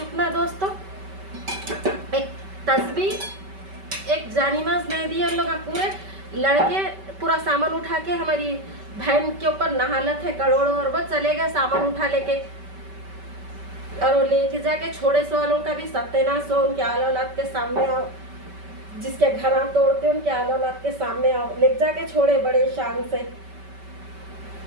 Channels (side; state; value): left; late; 5.2 ms